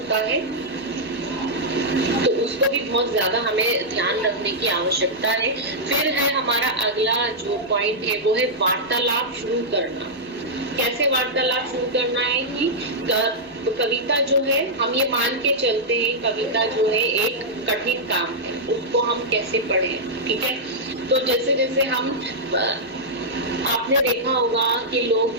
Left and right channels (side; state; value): both; normal; correlation -0.08